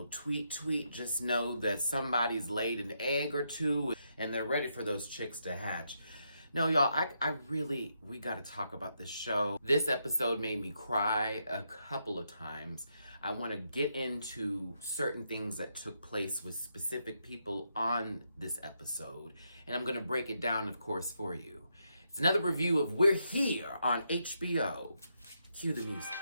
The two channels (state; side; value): inverted; both; correlation -0.80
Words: tweet, just know that somebody's laid an egg or two and they're ready for those chicks to hatch. No, y'all, we gotta talk about this show. This episode made me cry a couple of times. I wanna get into certain things that took place with specific people on this episode, and I'm gonna break it down, of course, for you. It's another review of We're Here on HBO. Cue the music.